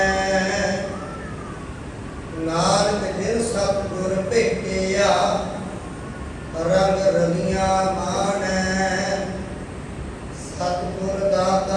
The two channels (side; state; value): both; identical; correlation 1.00